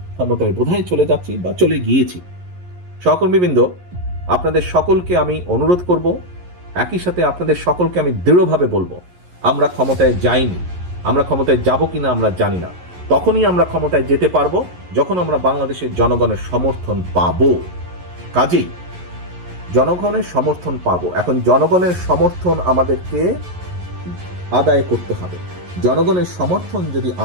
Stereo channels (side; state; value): left; late; 11 ms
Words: ক্ষমতায় বোধহয় চলে যাচ্ছি বা চলে গিয়েছি। সহকর্মীবৃন্দ, আপনাদের সকলকে আমি অনুরোধ করব, একই সাথে আপনাদের সকলকে আমি দৃঢ়ভাবে বলবো, আমরা ক্ষমতায় যাইনি। আমরা ক্ষমতায় যাব কিনা আমরা জানি না। তখনই আমরা ক্ষমতায় যেতে পারবো যখন আমরা বাংলাদেশের জনগণের সমর্থন পাবো। কাজেই জনগণের সমর্থন পাবো। এখন জনগণের সমর্থন আমাদেরকে আদায় করতে হবে। জনগণের সমর্থন যদি